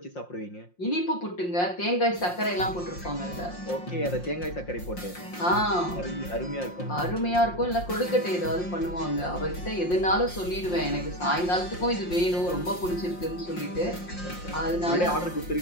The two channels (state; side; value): late; right; 5.6 ms